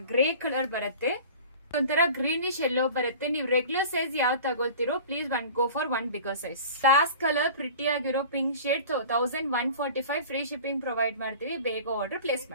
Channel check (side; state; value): both; inverted; correlation -0.40